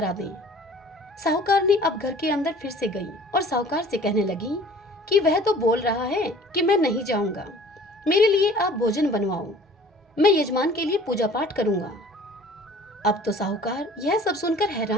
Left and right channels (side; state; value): both; normal; correlation 0.49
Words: दें। साहूकार ने अब घर के अंदर फिर से गई और साहूकार से कहने लगी कि वह तो बोल रहा है कि मैं नहीं जाऊंगा, मेरे लिए आप भोजन बनवाओ, मैं यजमान के लिए पूजा पाठ करूंगा। अब तो साहूकार यह सब सुनकर